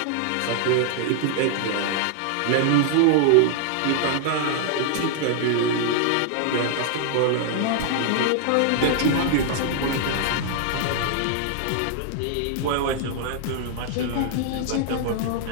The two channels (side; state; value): both; different; correlation -0.01